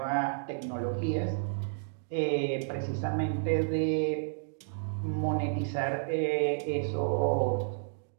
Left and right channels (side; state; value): left; silent; digital silence